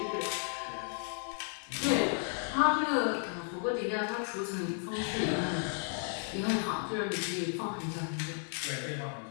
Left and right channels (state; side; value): silent; right; 55 dB below the other